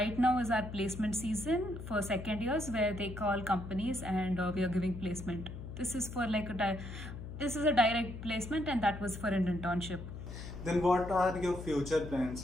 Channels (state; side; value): noise; left; hum, 10 dB below the sound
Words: now is our placement season for second years, where they call companies and we are giving placement. This is for this is a direct placement, and that was for an internship. then what are your future